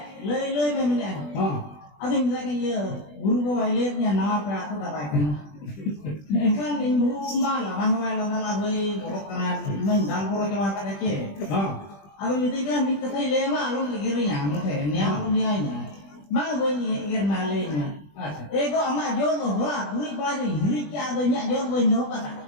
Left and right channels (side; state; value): right; late; 20 ms